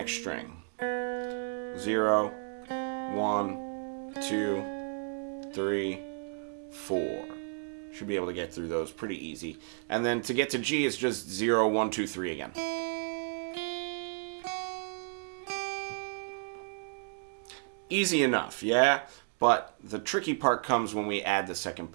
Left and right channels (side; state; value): left; silent; 56 dB below the other